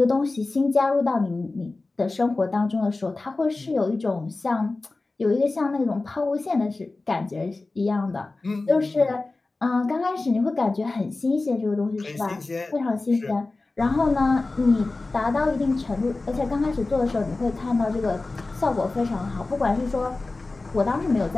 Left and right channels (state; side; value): quieter; right; 3.4 dB